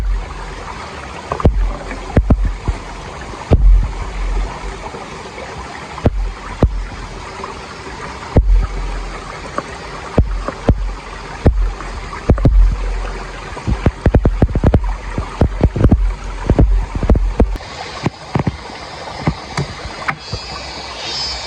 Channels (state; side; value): identical; both; correlation 1.00